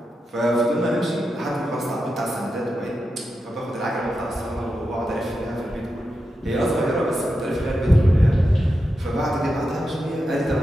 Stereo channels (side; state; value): both; normal; correlation 0.89